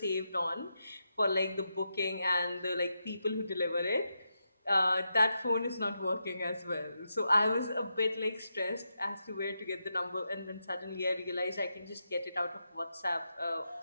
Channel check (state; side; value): inverted; both; correlation -0.86